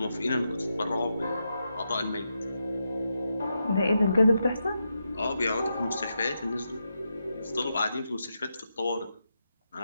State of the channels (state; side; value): inverted; both; correlation -0.85